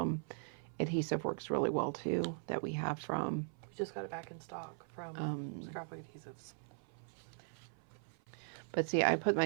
adhesive works really well too, that we have from... We just got it back in stock from Scrapbook Adhesives. But see, I put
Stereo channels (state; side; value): silent; left; 51 dB below the other